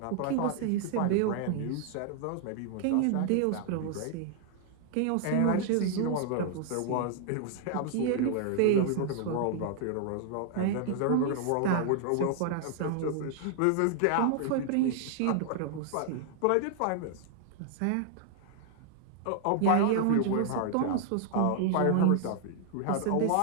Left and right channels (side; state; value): both; different; correlation -0.01